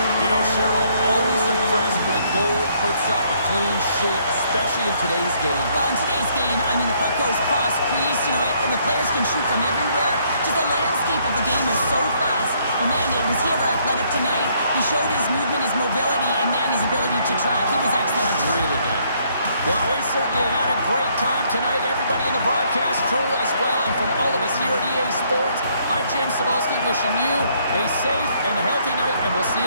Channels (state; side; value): inverted; both; correlation -0.68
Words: You know, Cheryl, always impressed when a goalie puts up a clean sheet, especially in today's game. Well, in today's game, I mean, the puck goes cross-crease, you know, and the players can shoot from everywhere. Just the landscape of the game is so fast. And man, was he ever athletic tonight? He showed his movement, his mobility, and man, his ability to track. He was excellent. Really good. Well, we certainly had a great time tonight. Everybody in the broadcast crew as well. And from all of us here at EA Sports, I'm James Cebulski wishing you a safe and healthy night, and we'll see you